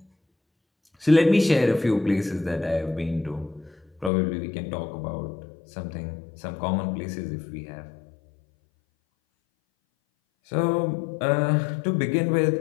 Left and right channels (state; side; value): drops out; right; at 4.1 s